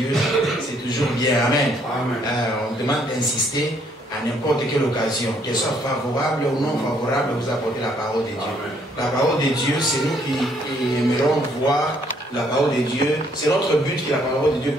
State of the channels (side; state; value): both; normal; correlation 0.67